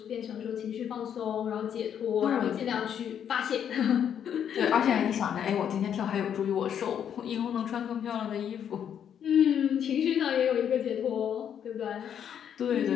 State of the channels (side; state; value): right; quieter; 8.8 dB